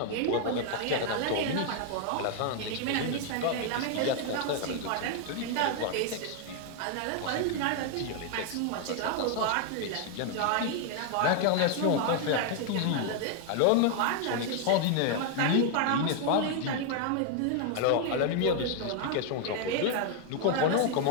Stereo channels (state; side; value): different; both; correlation 0.00